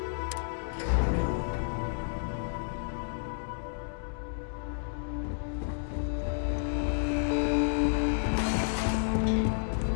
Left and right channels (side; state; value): right; silent; digital silence